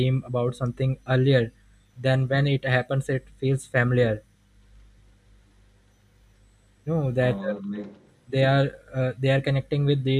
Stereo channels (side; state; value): both; identical; correlation 1.00